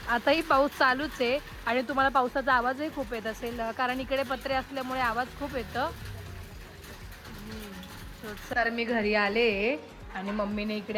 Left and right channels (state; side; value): identical; both; correlation 1.00